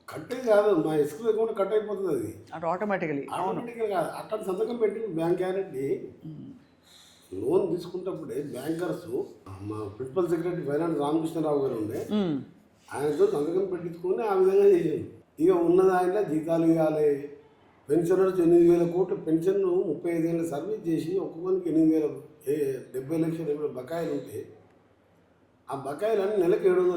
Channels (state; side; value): identical; both; correlation 1.00